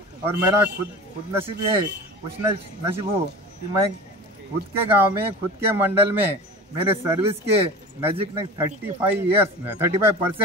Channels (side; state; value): both; normal; correlation 0.34